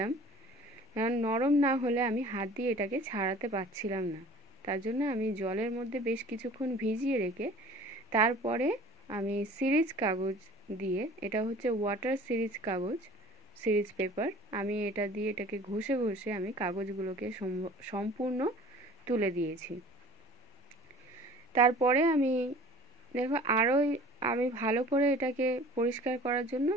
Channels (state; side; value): normal; both; correlation 0.46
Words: কারণ নরম না হলে আমি হাত দিয়ে এটাকে ছাড়াতে পারছিলাম না। তার জন্য আমি জলের মধ্যে বেশ কিছুক্ষণ ভিজিয়ে রেখে তারপরে আমি সিরিজ কাগজ দিয়ে, এটা হচ্ছে ওয়াটার সিরিজ কাগজ, সিরিজ পেপার, আমি এটা দিয়ে এটাকে ঘষে ঘষে আমি কাগজগুলোকে সম্পূর্ণ তুলে দিয়েছি। তারপরে আমি দেখো আরও আমি ভালো করে এটাকে পরিষ্কার করার জন্য